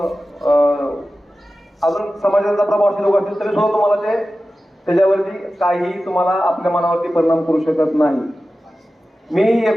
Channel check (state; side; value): normal; both; correlation 0.94